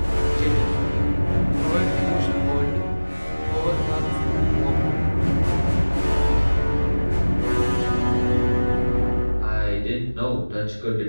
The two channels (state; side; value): inverted; both; correlation -1.00